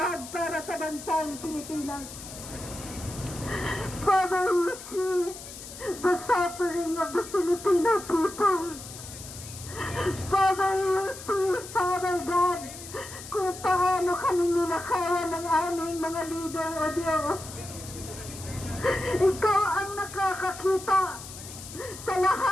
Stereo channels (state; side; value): noise; left; hiss, 13 dB below the sound